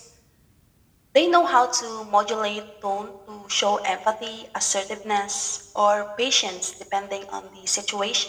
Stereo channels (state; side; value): identical; both; correlation 1.00